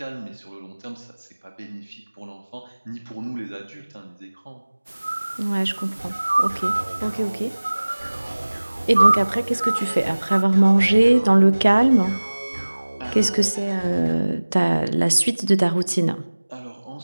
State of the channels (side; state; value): both; inverted; correlation -1.00